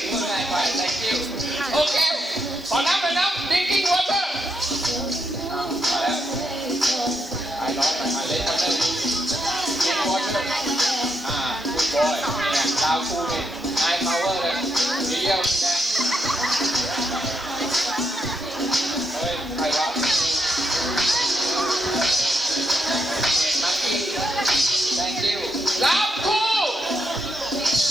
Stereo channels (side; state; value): both; normal; correlation 0.80